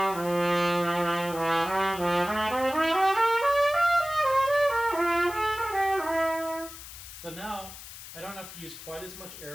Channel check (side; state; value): left; noise; hiss, 14 dB below the sound